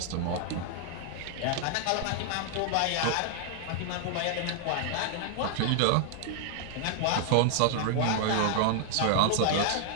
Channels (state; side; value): different; both; correlation 0.00